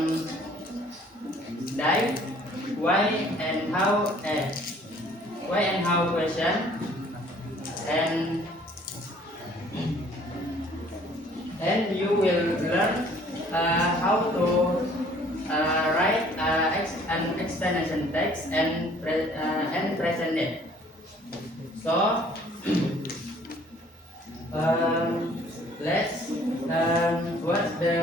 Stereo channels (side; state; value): both; normal; correlation 0.57